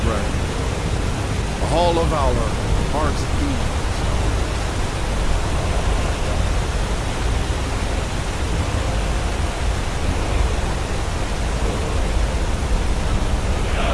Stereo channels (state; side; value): identical; both; correlation 1.00